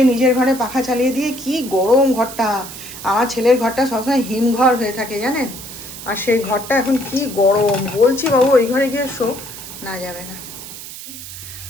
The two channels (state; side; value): noise; right; hiss, 12 dB below the sound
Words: নিজের ঘরে পাখা চালিয়ে দিয়ে, কি গরম ঘরটা, আমার ছেলের ঘরটা সবসময় হিমঘর হয়ে থাকে জানেন, আর সেই ঘরটা এখন কি গরম, বলছি বাবু ওই ঘরে গিয়ে শো, না যাবে না।